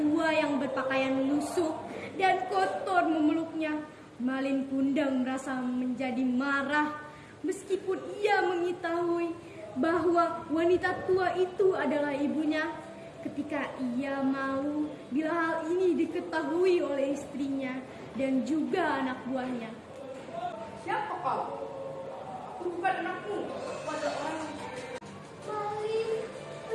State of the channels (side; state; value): both; identical; correlation 1.00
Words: yang berpakaian lusuh dan kotor memeluknya, Malin Kundang merasa menjadi marah. Meskipun ia mengetahui bahwa wanita tua itu adalah ibunya, ketika ia malu bila hal ini diketahui oleh istrinya dan juga anak buahnya. Siapa kau? Aku bukan anakmu. Aku adalah orang. Malin,